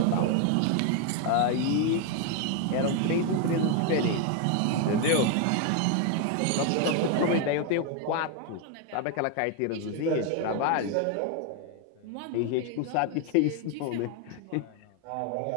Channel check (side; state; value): both; different; correlation 0.01